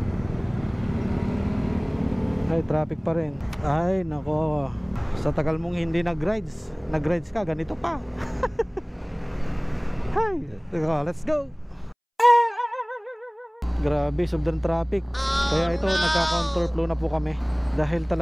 Ay, traffic pa rin. Ay, nako. Sa tagal mong hindi nag-rides ka, ganito pa. Hay, let's go. Grabe, sobrang traffic. Kaya ito, nagka-counterflow na po kami. Dahil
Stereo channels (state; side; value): identical; both; correlation 1.00